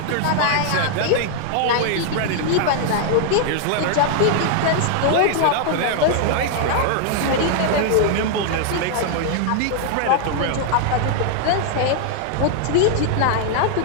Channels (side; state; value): both; different; correlation 0.00